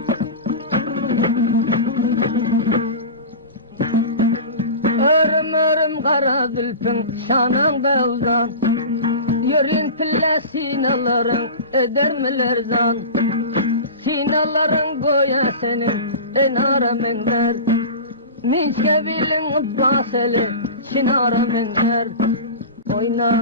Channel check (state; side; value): inverted; both; correlation -0.30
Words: Kara zülfün şananda uzan, yürün pille sinaların edermiler zan. Sinaların goya senin enara menler, minçke bilin baseli şinara menler.